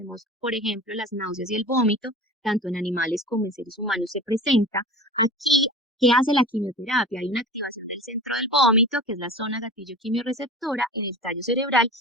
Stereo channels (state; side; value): normal; both; correlation 0.35